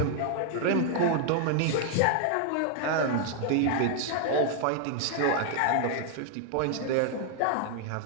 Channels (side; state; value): both; different; correlation 0.00